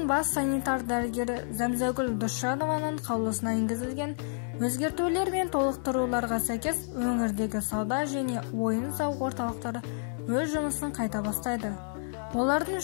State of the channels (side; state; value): right; silent; 58 dB below the other